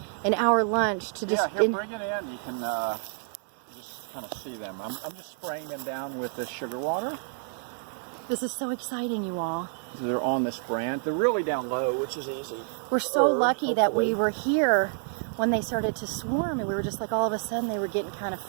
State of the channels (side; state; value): left; silent; 59 dB below the other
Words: an hour lunch to just... Yeah, here, bring it in. You can just kind of see them. I'm just spraying them down with the sugar water. This is so exciting, you all. They're on this branch. They're really down low, which is easy. We're so lucky that we were here when they started to swarm, and we were just like, all of a sudden they were getting kind of